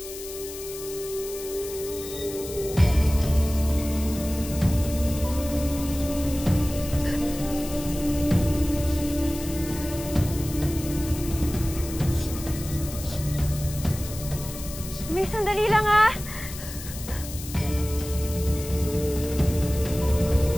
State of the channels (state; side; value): noise; left; hiss, 12 dB below the sound